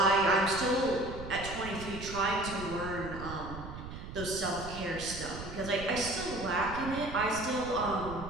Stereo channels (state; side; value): noise; right; rumble, 10 dB below the sound